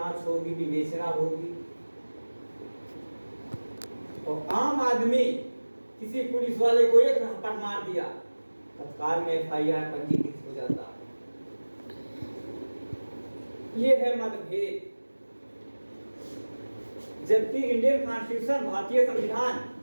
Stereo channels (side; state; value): both; inverted; correlation -1.00